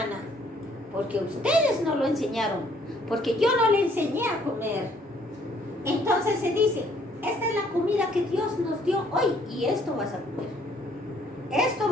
Porque ustedes no lo enseñaron. Porque yo no le enseñé a comer. Entonces se dice, esta es la comida que Dios nos dio hoy y esto vas a comer. Esto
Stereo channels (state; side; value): normal; both; correlation 0.63